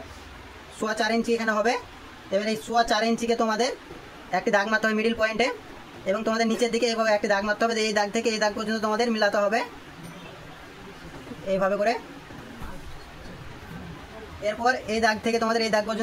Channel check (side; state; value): both; identical; correlation 1.00